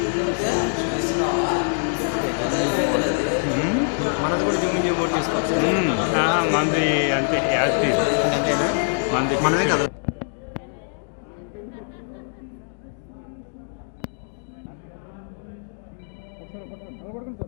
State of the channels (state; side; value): silent; right; digital silence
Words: మనది కూడా జూమింగ్ బోర్డు తీసుకోవచ్చు. మంది అంతే యాక్టివ్ అంతేనా? మంది మనమే కదా.